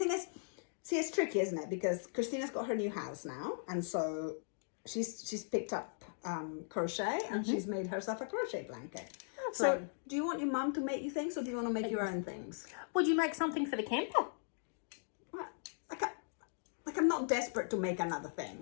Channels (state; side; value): silent; right; digital silence